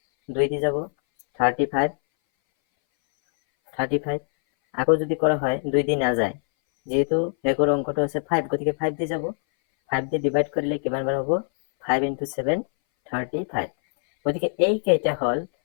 2 দি যাব 35, আকৌ যদি কৰা হয় 2 দি নাযায়, যেহেতু শেষৰ অংকটো আছে 5, গতিকে 5 দি যাব, 5 দি ডিভাইড কৰিলে কিমান বাৰ হ'ব? 5 × 7 35। গতিকে এই কেইটা হ'ল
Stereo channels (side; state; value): right; silent; 61 dB below the other